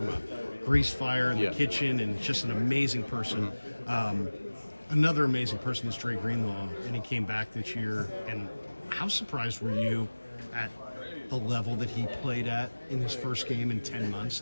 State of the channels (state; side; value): inverted; both; correlation -1.00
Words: a grease fire in the kitchen, and just an amazing person. Mm-hmm. Another amazing person is Dre Greenlaw, and he came back this year. And how surprised were you at the level that he played at in his first game in 10 months?